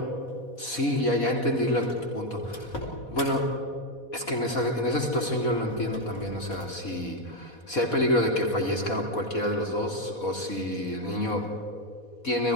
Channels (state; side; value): late; right; 4.1 ms